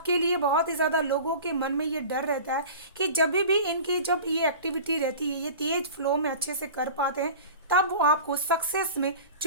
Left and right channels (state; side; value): inverted; both; correlation -0.38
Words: लिए बहुत ही ज़्यादा लोगों के मन में ये डर रहता है कि जब भी इनकी जब ये एक्टिविटी रहती है, ये तेज फ्लो में अच्छे से कर पाते हैं, तब वो आपको सक्सेस में